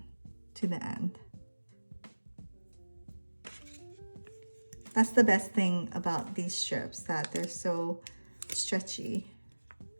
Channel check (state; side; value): inverted; both; correlation -1.00